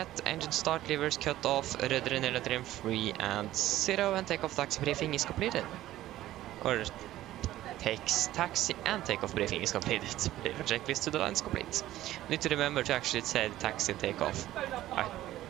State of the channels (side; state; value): left; quieter; 14.5 dB